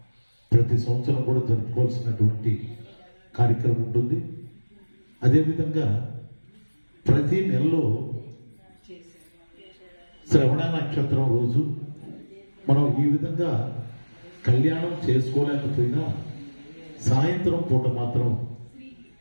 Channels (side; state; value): both; inverted; correlation -1.00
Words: ప్రతి సంవత్సరం కూడా జరుపుకోవాల్సినటువంటి కార్యక్రమం ఉంటుంది. అదేవిధంగా ప్రతి నెలలో శ్రవణ నక్షత్రం రోజు మనం ఈ విధంగా కళ్యాణం చేసుకోలేకపోయినా సాయంత్రం పూట మాత్రం